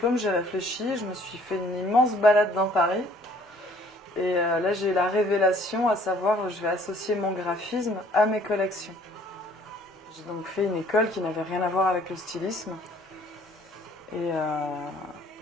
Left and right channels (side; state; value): both; normal; correlation 0.58